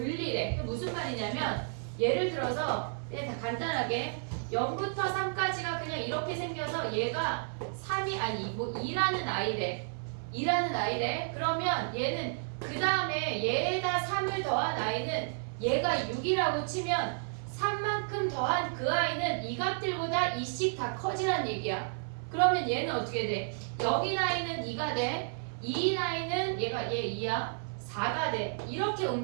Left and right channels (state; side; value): silent; left; 55 dB below the other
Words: 그 무슨 말이냐면 예를 들어서 그냥 다 간단하게 0부터 3까지가 그냥 이렇게 생겨서 얘가 3이 아니 뭐 2라는 아이래. 2라는 아이래. 그러면 얘는 그 다음에 얘에다 3을 더한 아이는 얘가 6이라고 치면 3만큼 더한 그 아이는 이 값들보다 2씩 다 커지란 얘기야. 그러면 얘는 어떻게 돼? 0인 아이는 2가 돼. 2인 아이는 얘가 얘 2야. 4가 돼. 이렇게